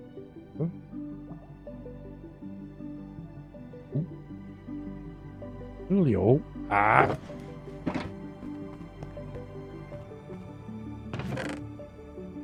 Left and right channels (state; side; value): identical; both; correlation 1.00